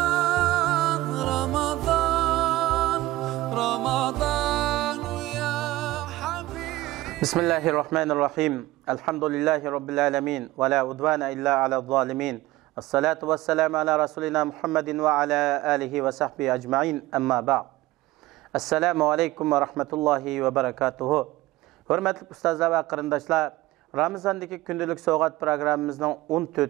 Ramazan, Ramazan ya Habib. Bismillahirrahmanirrahim. Elhamdülillahi Rabbil alemin. Ve la udvana illa ala zalimin. Esselatu vesselamu ala Resulina Muhammedin ve ala alihi ve sahbihi ecma'in. Amma ba'd. Esselamu aleyküm ve rahmetullahi ve berekatuhu. Hürmetli ustazlar ve kırındaşlar, Ramazan'daki gündelik soğuk programımızın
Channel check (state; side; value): quieter; left; 17.8 dB